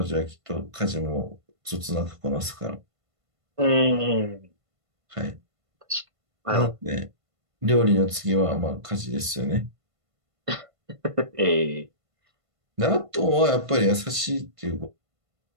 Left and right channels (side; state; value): left; late; 1.5 ms